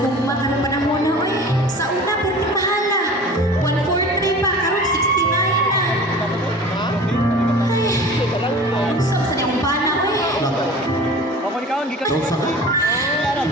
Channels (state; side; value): normal; both; correlation 0.40